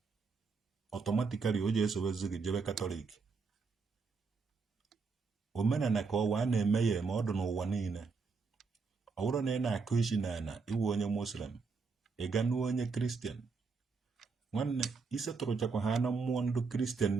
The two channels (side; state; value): left; quieter; 4.7 dB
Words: ọtọmatikali o ji esobezi gị jebe Katọlik. Omenala ka ọwa a na-eme ya eme, ọ dị n'ụwa niile. Ọ bụrụ na ị na-akụ isi n'ala iwu onye Muslim, ị ga n'u onye Kristian, nwanne isetụrụchakwa ha na mmụọ ndị Kristian